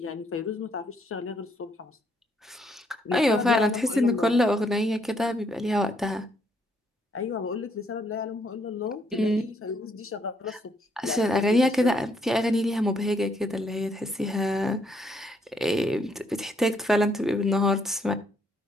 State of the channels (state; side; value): normal; both; correlation 0.71